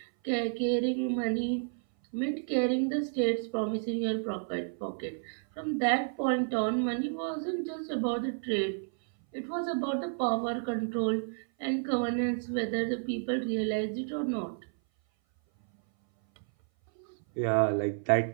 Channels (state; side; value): silent; left; 57 dB below the other